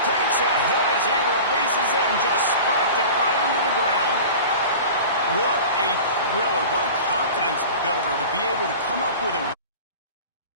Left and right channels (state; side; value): inverted; both; correlation -0.37